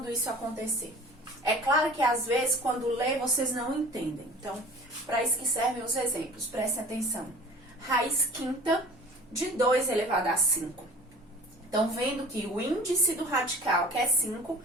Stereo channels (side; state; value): both; normal; correlation 0.43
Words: isso acontecer? É claro que às vezes, quando lê, vocês não entendem. Então, para isso que servem os exemplos, prestem atenção. Raiz quinta de 2 elevado a 5. Então, vendo que o índice do radical, que é 5,